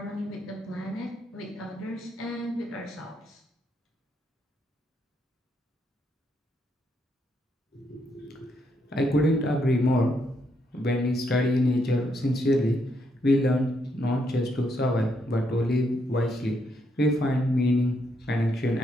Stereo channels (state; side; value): normal; both; correlation 0.77